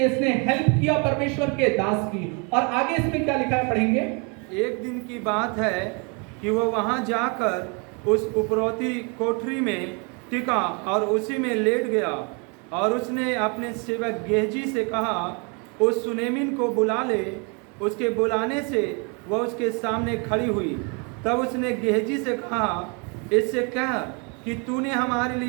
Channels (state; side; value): quieter; left; 33.7 dB